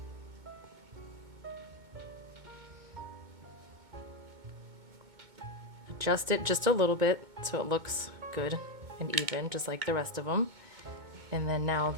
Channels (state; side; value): late; left; 2.2 ms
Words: Adjust it just a little bit so it looks good and even, just like the rest of them. And then now